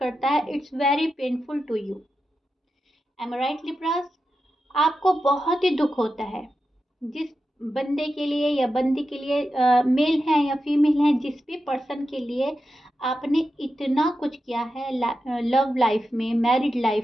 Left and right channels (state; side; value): normal; both; correlation 0.90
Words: है। It's very painful to you. Am I right Libras? आपको बहुत ही दुख होता है जिस बंदे के लिए या बंदी के लिए, मेल है या फीमेल है, जिस भी पर्सन के लिए आपने इतना कुछ किया है लव लाइफ में, मैरिड